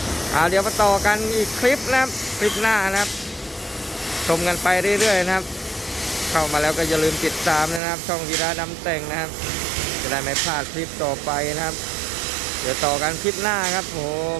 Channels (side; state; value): left; drops out; at 7.8 s